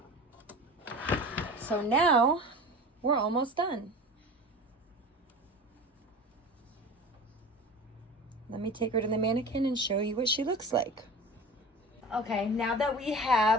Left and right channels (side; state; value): both; normal; correlation 0.35